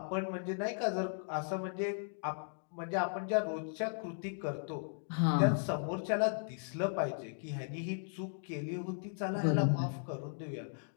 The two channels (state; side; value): silent; right; digital silence